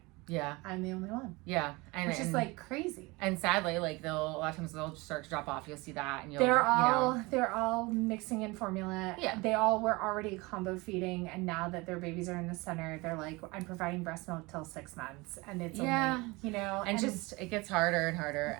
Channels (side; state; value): left; quieter; 24.1 dB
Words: Yeah. I'm the only one. Yeah. Which is like crazy. And sadly, like a lot of times they'll start to drop off. You'll see that and they're all mixing in formula. Yeah. They all were already combo feeding, and now that their babies are in the center, they're like, I'm providing breast milk till 6 months, and it's only, and just it gets harder and harder.